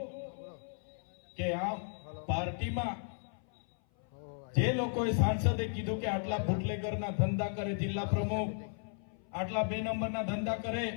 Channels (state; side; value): silent; right; 55 dB below the other